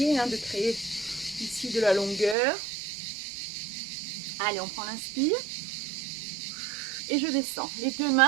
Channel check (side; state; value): left; drops out; at 2.4 s